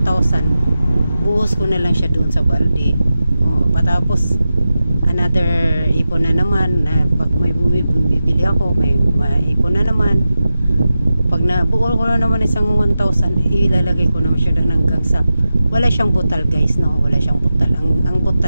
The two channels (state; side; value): inverted; both; correlation -0.92